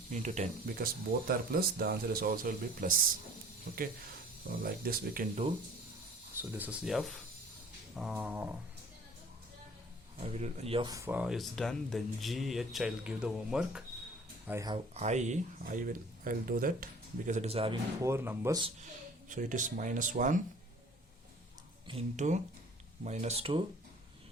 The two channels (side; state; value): both; normal; correlation 0.50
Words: into 10, because both are plus, the answer is also will be plus. Okay, so like this we can do. So this is F. F is done. Then G, H, I'll give the homework. I have I'll do that because it is having 4 numbers. So it is -1 into -2